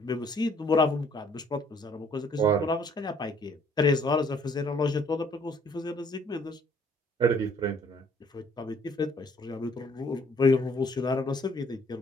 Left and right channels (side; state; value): both; normal; correlation 0.61